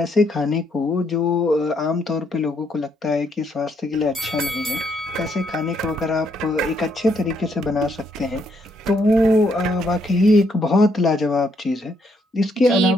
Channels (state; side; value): normal; both; correlation 0.73